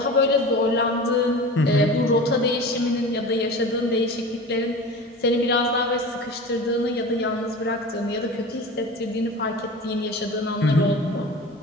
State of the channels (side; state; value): both; normal; correlation 0.34